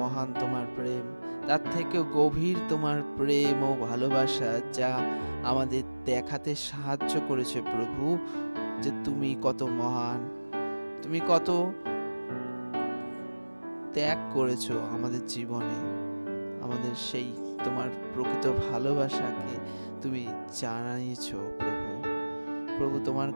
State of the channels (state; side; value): inverted; both; correlation -1.00